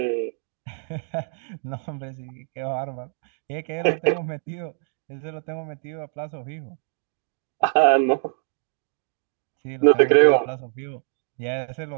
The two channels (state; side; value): silent; left; 62 dB below the other